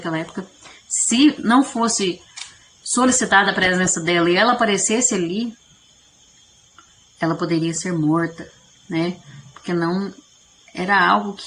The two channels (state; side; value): identical; both; correlation 1.00